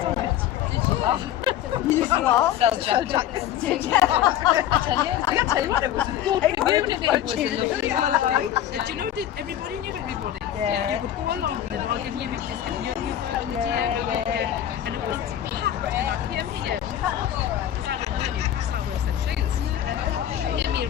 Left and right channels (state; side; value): quieter; right; 11.3 dB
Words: used to sell jackets. Did you? You used to what? Sell jackets. I can tell you what, it was a good community. It was a lovely. Do you know that everybody knew everybody? Yeah. You could go along with it, I'll give you a bit of this, and you were on the DM, and it was packed, and I came here. Because I don't know Newcastle, I work in shoes. Came here,